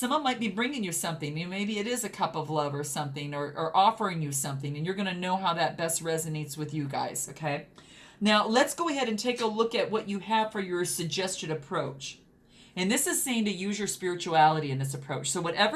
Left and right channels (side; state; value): both; identical; correlation 1.00